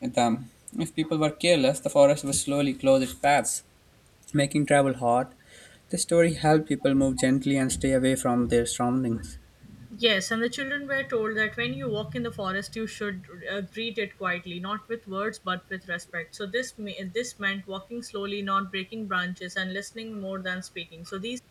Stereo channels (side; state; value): both; identical; correlation 1.00